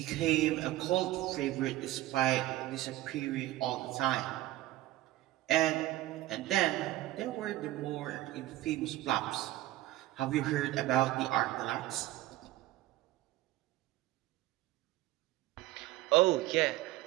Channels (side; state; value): left; quieter; 16.2 dB